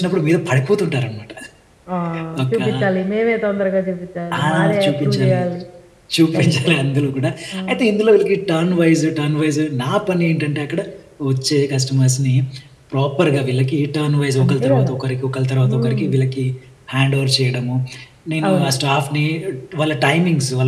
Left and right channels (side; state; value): both; identical; correlation 1.00